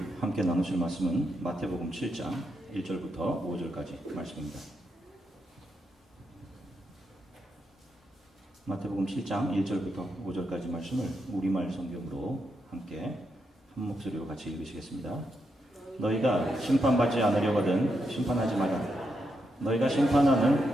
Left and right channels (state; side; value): normal; both; correlation 0.83